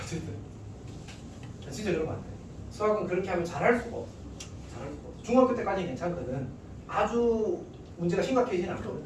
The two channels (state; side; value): identical; both; correlation 1.00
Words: 어쨌든 진짜 그러면 안 돼. 수학은 그렇게 하면 잘할 수가 없어. 잘할 수가 없어. 중학교 때까지는 괜찮거든. 아주 문제가 심각해지진 않거든.